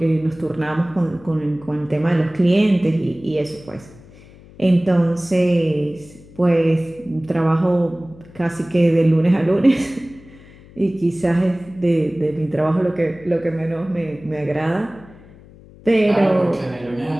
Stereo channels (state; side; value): noise; left; hum, 22 dB below the sound